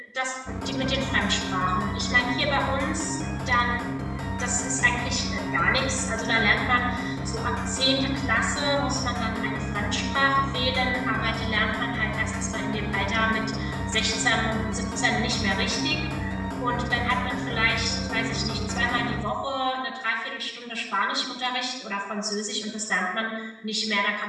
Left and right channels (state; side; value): identical; both; correlation 1.00